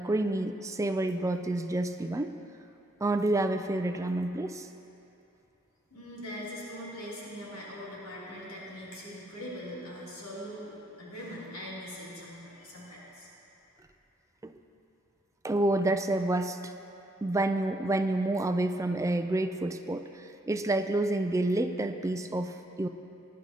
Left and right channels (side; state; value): both; normal; correlation 0.75